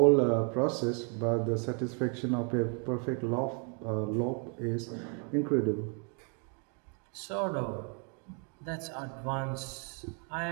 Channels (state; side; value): quieter; left; 38.5 dB